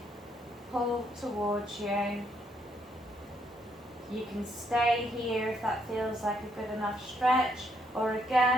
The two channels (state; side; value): normal; both; correlation 0.73